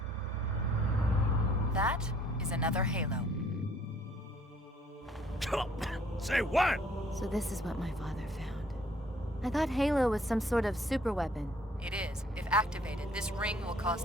That is another Halo. Say what? So this is what my father found. I thought Halo was some sort of super weapon. It is. If activated, this ring will cause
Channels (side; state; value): both; normal; correlation 0.61